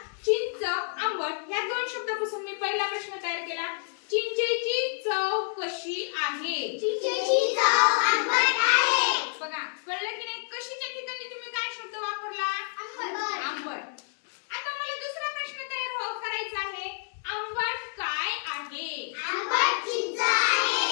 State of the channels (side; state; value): right; silent; 58 dB below the other